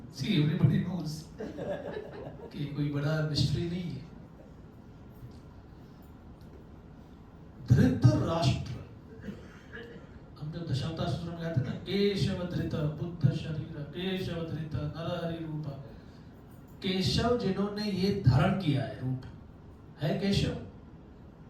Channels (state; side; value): identical; both; correlation 1.00